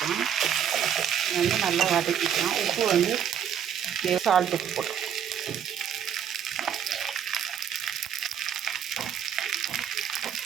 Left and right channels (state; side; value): quieter; left; 8.8 dB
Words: வந்து நல்லா வதக்கிக்கலாம். உப்பு வந்து சால்ட் உப்பு போட்டுக்கலாம்.